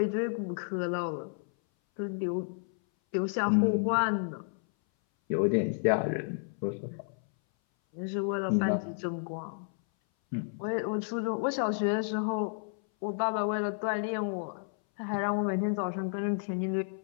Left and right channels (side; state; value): right; silent; 57 dB below the other